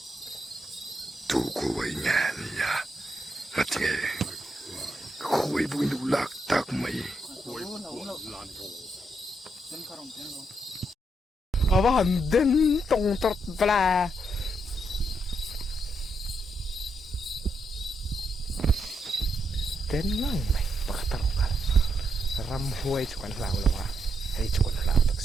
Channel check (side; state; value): both; normal; correlation 0.80